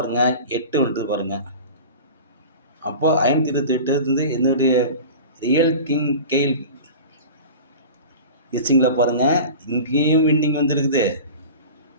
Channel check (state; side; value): inverted; both; correlation -0.35